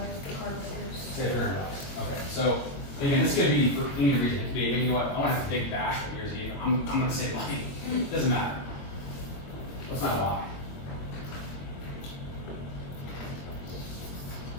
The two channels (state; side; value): late; right; 23 ms